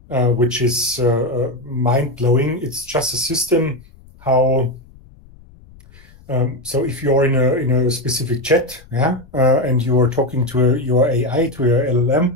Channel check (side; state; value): left; noise; rumble, 24 dB below the sound